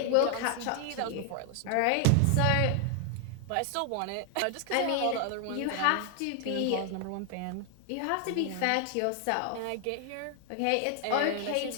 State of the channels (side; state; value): both; different; correlation 0.00